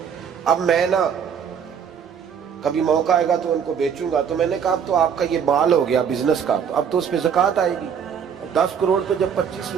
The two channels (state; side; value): quieter; left; 7.5 dB